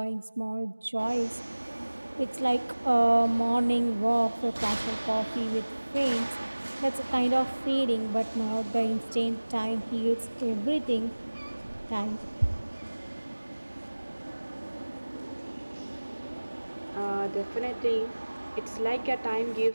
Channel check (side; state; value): both; inverted; correlation -1.00